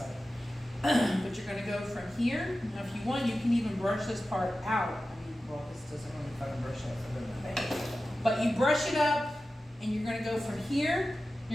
But you're gonna go from here. Now, if you want, you can even brush this part out. I mean, well, this doesn't really fucking brush up, so it doesn't matter. But you brush it up, and you're gonna go from here.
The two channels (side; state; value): both; normal; correlation 0.94